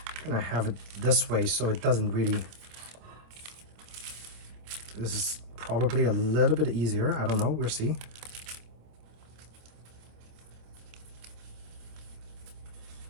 I'm gonna have it this way so it doesn't really, this is probably a little bit easier. I don't know, we'll see.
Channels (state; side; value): late; left; 26 ms